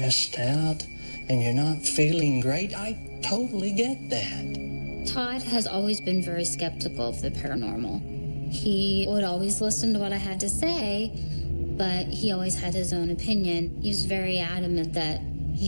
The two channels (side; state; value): both; inverted; correlation -1.00